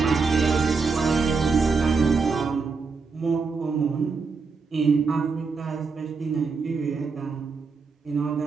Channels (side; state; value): left; quieter; 4.7 dB